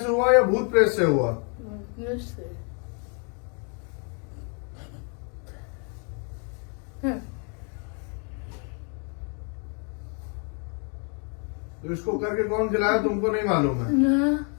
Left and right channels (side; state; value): right; quieter; 38.7 dB